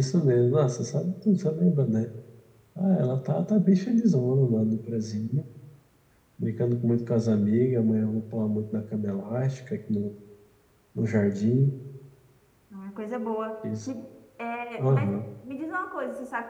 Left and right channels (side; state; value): both; identical; correlation 1.00